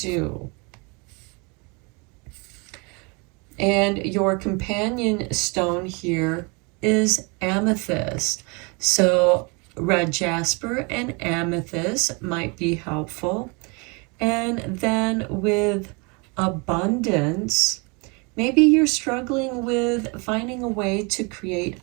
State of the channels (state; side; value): quieter; left; 30.7 dB